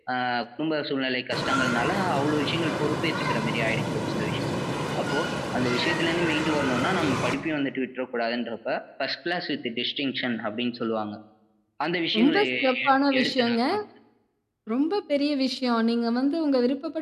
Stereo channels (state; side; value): identical; both; correlation 1.00